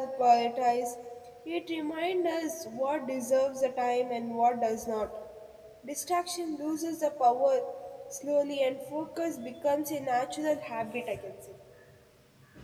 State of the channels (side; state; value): both; identical; correlation 1.00